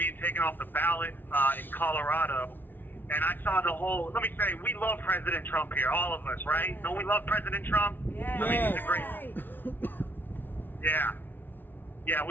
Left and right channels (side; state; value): right; late; 0.093 ms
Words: taken off the ballot in Colorado, and I saw the whole. Let me say, we love President Trump here, all of us, right? Don't we love President Trump? Yeah. I mean, he's a great. Yeah,